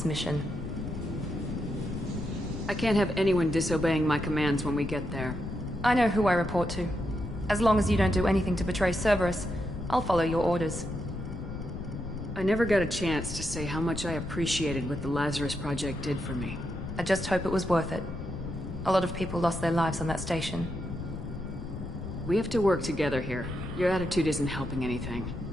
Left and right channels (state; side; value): noise; left; rumble, 8 dB below the sound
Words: mission. I can't have anyone disobeying my commands when we get there. I know who I report to. As long as you don't do anything to betray Cerberus, I'll follow your orders. I never got a chance to say how much I appreciated what the Lazarus Project did for me. I just hope it was worth it. A lot of people lost their lives on that station. We have to work together here. Your attitude isn't helping anything.